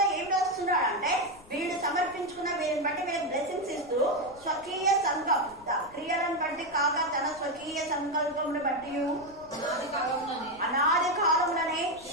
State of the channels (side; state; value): left; noise; rumble, 25 dB below the sound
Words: ఏం రాస్తున్నాడు అంటే వీళ్ళు సమర్పించుకున్న వీరిని బట్టి వీళ్ళకి బ్లెస్సింగ్స్ ఇస్తూ స్వకీయ సంకల్ప క్రియలను బట్టి కాక తన స్వకీయ సంకల్పమును బట్టి అనాది కాలములనే